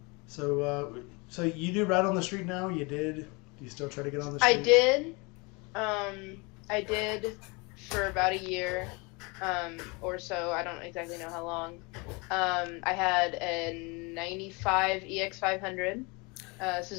So you do ride on the street now? You did? Do you still try to get on the street? I did for about a year. Or so, I don't exactly know how long. I had a 95 EX500,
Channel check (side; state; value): right; quieter; 28.2 dB